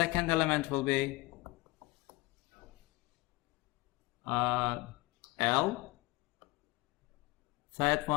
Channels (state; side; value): quieter; right; 21.7 dB